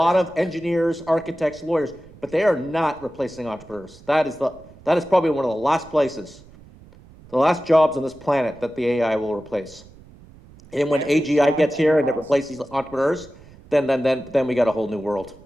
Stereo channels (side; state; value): right; noise; rumble, 23 dB below the sound